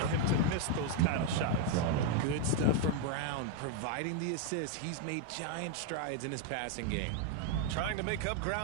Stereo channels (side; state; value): both; different; correlation 0.01